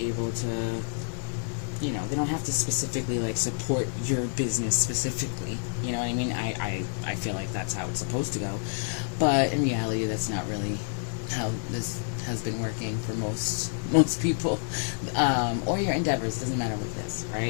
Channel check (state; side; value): silent; right; digital silence